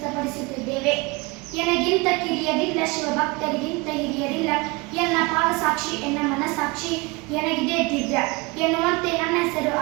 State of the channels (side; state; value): left; quieter; 26.1 dB